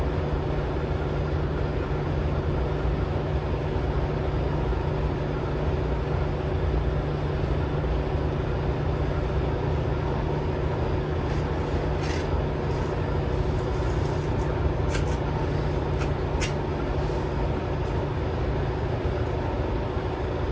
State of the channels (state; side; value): identical; both; correlation 1.00